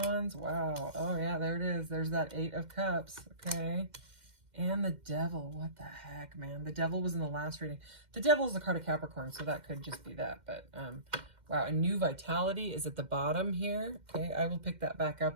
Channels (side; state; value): left; late; 2.1 ms